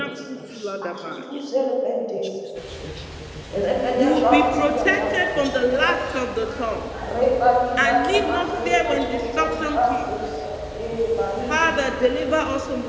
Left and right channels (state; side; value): identical; both; correlation 1.00